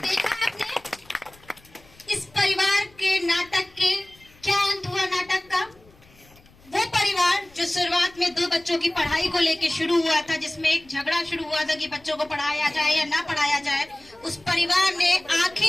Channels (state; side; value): noise; left; rumble, 28 dB below the sound